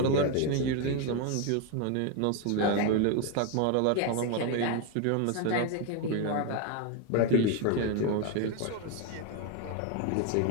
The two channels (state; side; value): different; both; correlation 0.01